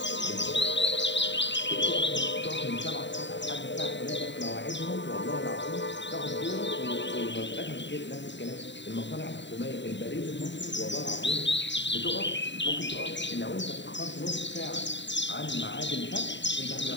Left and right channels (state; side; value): late; right; 0.52 ms